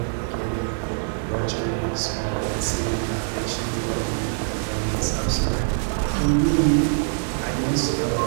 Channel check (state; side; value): silent; left; digital silence